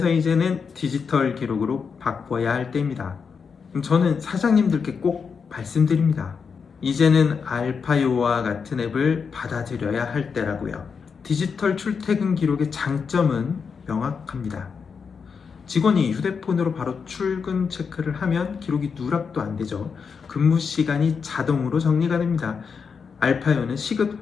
이제는 디지털 기록으로 바꿔야 할 때입니다. 저는 사장님들께 꼭 말씀드립니다. 이제는 알파요와 같은 앱을 받아들여야 할 때라고요. 디지털 출퇴근 기록의 장점은 명확합니다. 직원이 휴대폰으로 바로 출근 체크를 하면 기록이 누락도 안 되죠. 근무 시간이 자동으로 정리가 됩니다. 알파요는 시급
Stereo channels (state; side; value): quieter; right; 5.9 dB